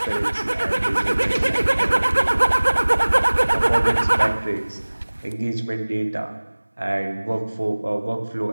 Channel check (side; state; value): both; inverted; correlation -1.00